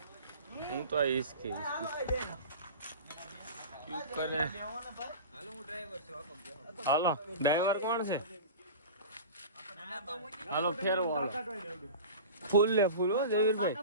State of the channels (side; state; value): both; inverted; correlation -0.33